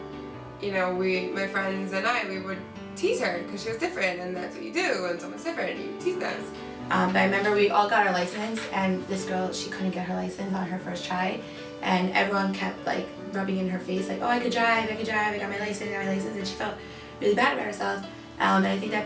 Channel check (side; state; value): both; identical; correlation 1.00